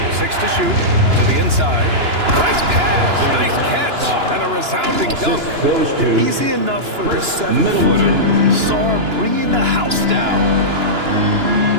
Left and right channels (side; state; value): left; late; 2.9 ms